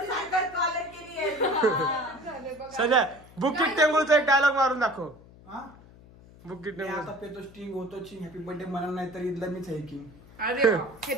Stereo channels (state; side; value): noise; left; hum, 22 dB below the sound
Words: साखर कॉलर केली आहे। सध्या बुकिट टेंगुलचा एक डायलॉग मारून दाखव, हा बुकिट मी टेंगुल। आता पेतो स्टिंग होतो चिंग, हॅपी बर्थडे म्हणाल नाही तर इथला मीच आहे की, अरे